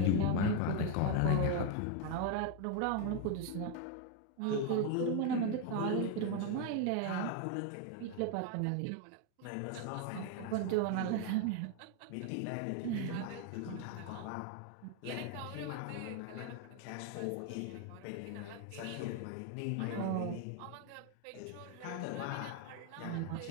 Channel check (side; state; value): both; different; correlation 0.01